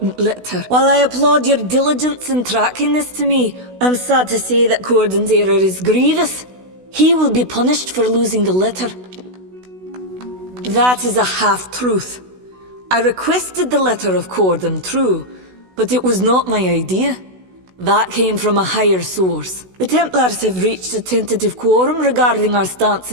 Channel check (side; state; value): left; late; 16 ms